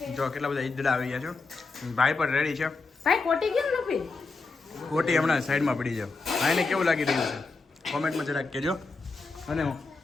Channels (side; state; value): right; quieter; 4.0 dB